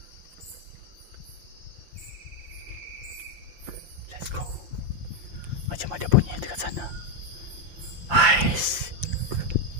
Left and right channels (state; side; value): late; left; 5.8 ms